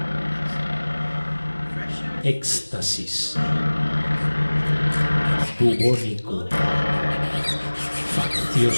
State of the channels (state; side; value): inverted; both; correlation -1.00